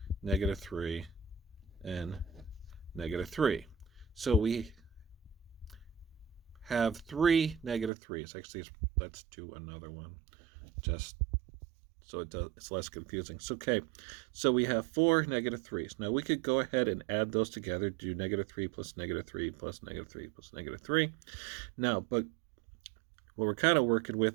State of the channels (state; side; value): drops out; left; at 7.9 s